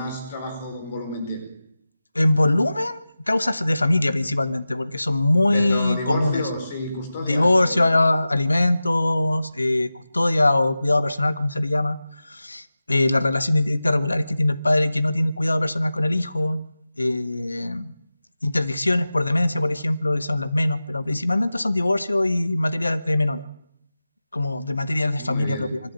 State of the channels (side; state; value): both; inverted; correlation -0.95